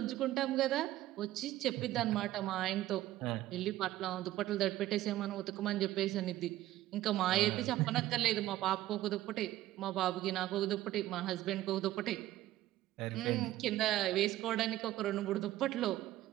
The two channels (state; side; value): quieter; left; 14.9 dB